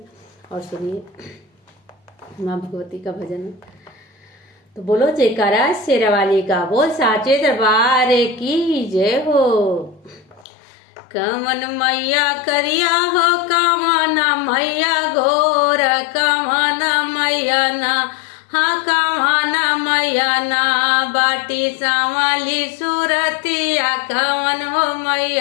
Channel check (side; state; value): right; drops out; at 10.5 s